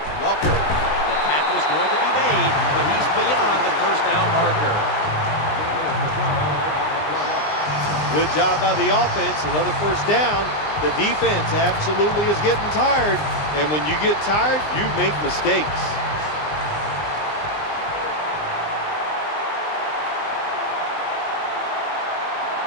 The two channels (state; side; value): late; right; 20 ms